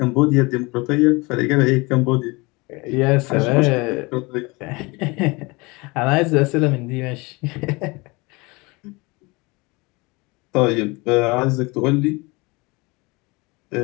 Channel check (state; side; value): quieter; right; 25.4 dB